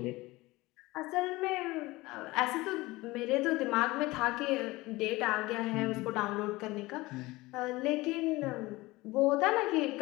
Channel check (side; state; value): right; quieter; 20.6 dB